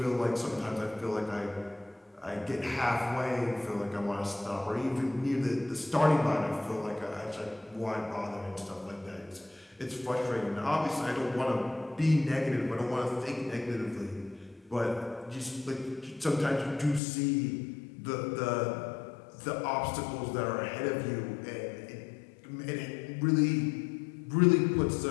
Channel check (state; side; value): drops out; right; at 17.0 s